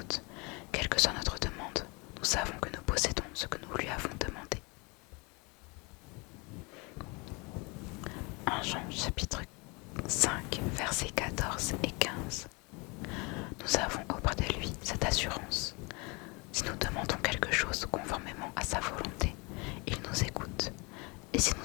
quelle que soit notre demande, nous savons que nous possédons ce que nous lui avons demandé. 1 Jean chapitre 5 versets 14 et 15. Nous avons auprès de lui cette assurance. Si nous demandons quelque chose conformément à sa volonté, il nous écoute. Et si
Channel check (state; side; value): quieter; right; 28.8 dB